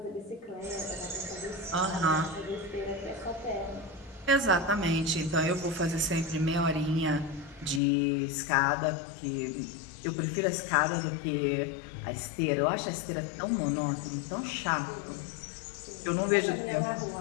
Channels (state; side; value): drops out; right; at 7.8 s